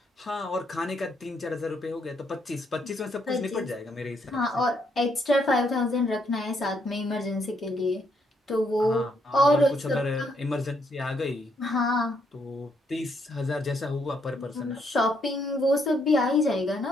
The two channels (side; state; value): both; normal; correlation 0.74